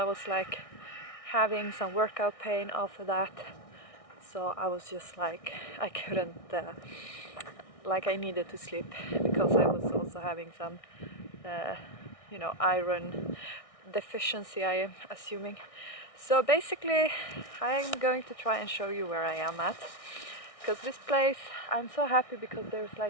was like having some workout pain after that, so I was just like I couldn't like I needed to sleep because I was also having some iron deficiency, I am assuming. So basically I'm going to try and show you where I am at, because this place, I'm so happy because there's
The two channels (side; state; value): right; late; 1.6 ms